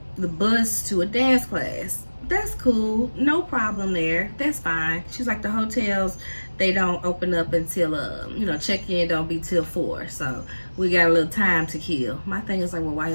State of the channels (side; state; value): both; inverted; correlation -1.00